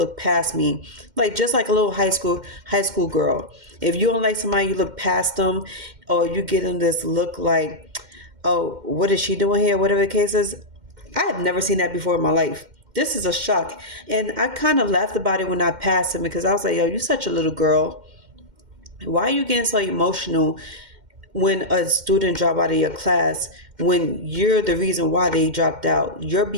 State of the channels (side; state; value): left; late; 2.1 ms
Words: past me. Like, just like a little high school girl. If you don't like somebody, you look past them, or you get him this look like, oh, what is she doing here? Whatever the case is. I had never seen that before in my life. This is a shock. And I kind of laughed about it when I passed him, because I was like, yo, you're such a little girl. Why are you getting so emotional when a student drop out of your class, when you're the reason why they dropped out? Your